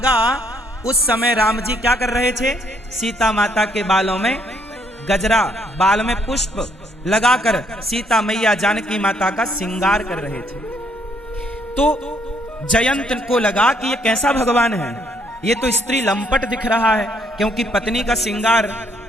उस समय राम जी क्या कर रहे थे? सीता माता के बालों में गजरा, बाल में पुष्प लगाकर सीता मैया जानकी माता का श्रृंगार कर रहे थे। तो जयंत को लगा कि ये कैसा भगवान है, ये तो स्त्री लंपट दिख रहा है, क्योंकि पत्नी का श्रृंगार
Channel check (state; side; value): normal; both; correlation 0.69